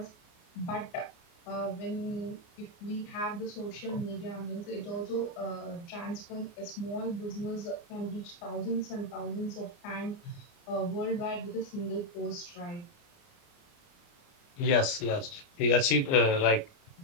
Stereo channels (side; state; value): right; late; 29 ms